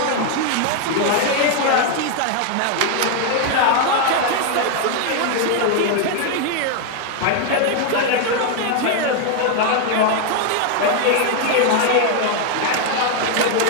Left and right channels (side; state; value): both; different; correlation 0.01